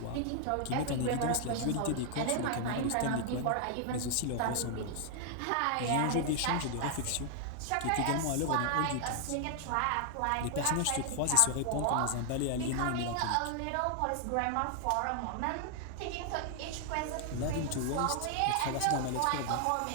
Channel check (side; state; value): both; different; correlation 0.00